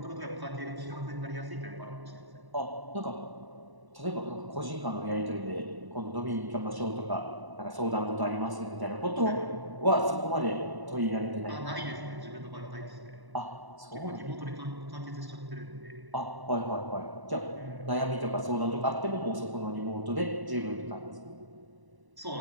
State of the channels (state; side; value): late; left; 1.0 ms